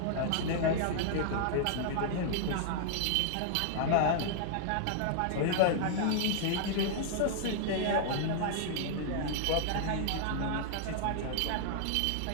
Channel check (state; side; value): different; both; correlation -0.01